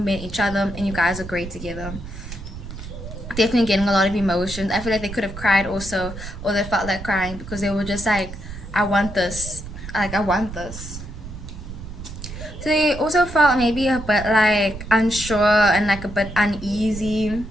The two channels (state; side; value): noise; right; rumble, 11 dB below the sound